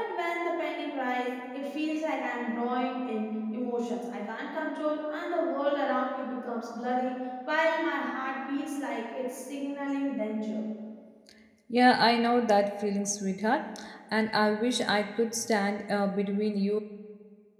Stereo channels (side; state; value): both; identical; correlation 1.00